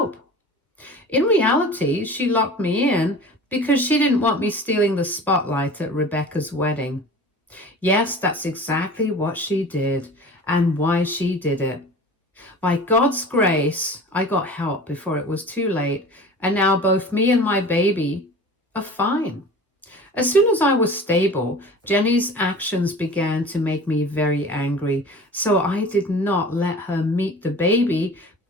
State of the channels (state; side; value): normal; both; correlation 0.39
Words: In reality, she locked me in because she didn't want me stealing the spotlight at Rebecca's wedding. Yes, that's exactly what she did and why she did it. By God's grace, I got help before it was too late, and now both me and my baby are fine. As soon as I was stable, Jenny's actions began to make me very angry, so I did not let her meet the baby